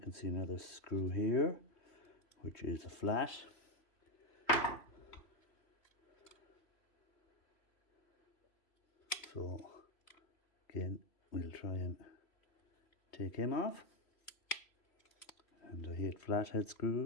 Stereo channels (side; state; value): right; late; 3.0 ms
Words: can see another screw here, which is a flat. So again, we'll try and take him off. And I hate flathead